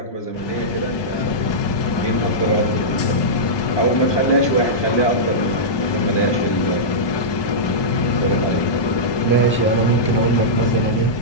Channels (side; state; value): right; late; 1.2 ms